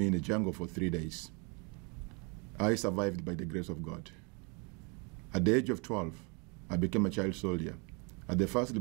in the jungle for 3 days. I survived by the grace of God. At the age of 12, I became a child soldier at the first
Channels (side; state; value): left; quieter; 32.5 dB